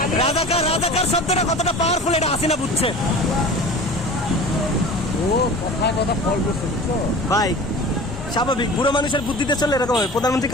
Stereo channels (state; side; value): normal; both; correlation 0.38